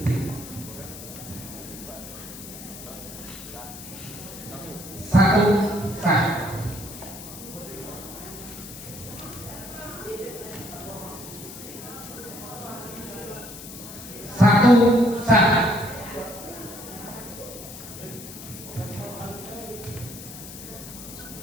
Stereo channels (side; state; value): left; noise; hiss, 13 dB below the sound